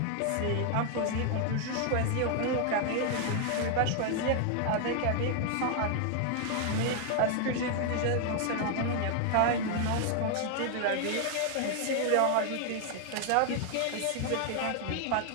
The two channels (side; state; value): both; different; correlation 0.00